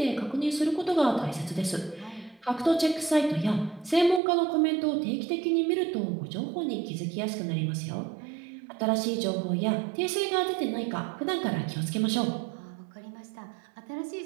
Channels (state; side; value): drops out; left; at 4.2 s